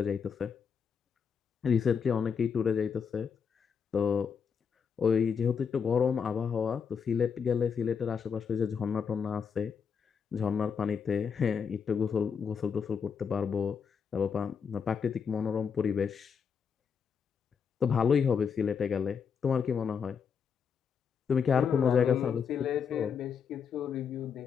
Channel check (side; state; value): right; quieter; 6.6 dB